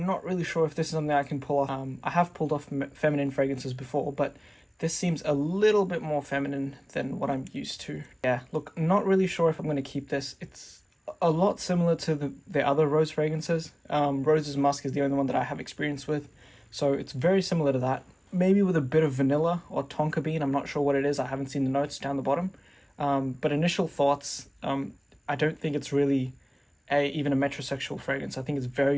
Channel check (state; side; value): identical; both; correlation 1.00